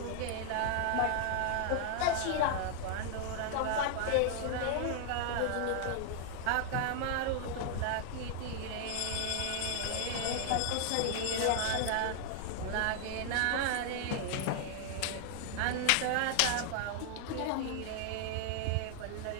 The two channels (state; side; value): different; both; correlation 0.00